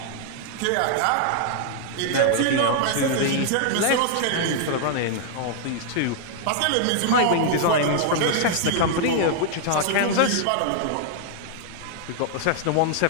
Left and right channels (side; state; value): both; different; correlation -0.01